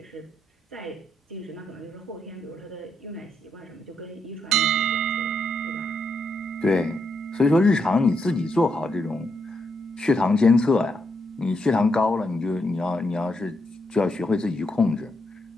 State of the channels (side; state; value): both; normal; correlation 0.80